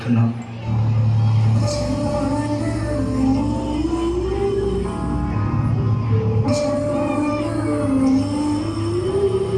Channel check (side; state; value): both; identical; correlation 1.00